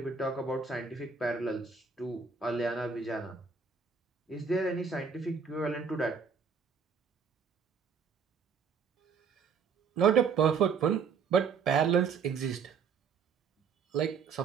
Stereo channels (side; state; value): left; quieter; 5.8 dB